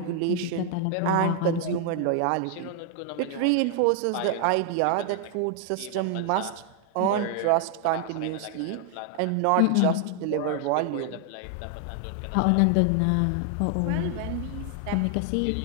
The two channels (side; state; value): both; different; correlation 0.00